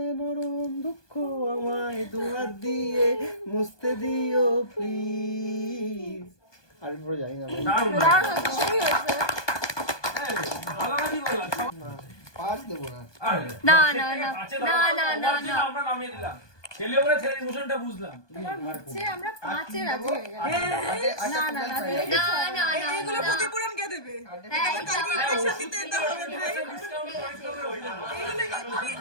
নরম দুঃখ, আমায় দুহাত দিয়ে মুছতে দিও প্লিজ। আর পরে জানি না পাঁচ দেবো না। না না না না না না না আমরা নামিয়ে দিলাম। ছেলে বলে ছেলের ইমোশনটা বুঝলাম। আমরা 5-এ রাজি হয়ে গেলাম। না না না না না এগুলো ক্ষতিপূরণ কে দেবে?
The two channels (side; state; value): right; late; 1.2 ms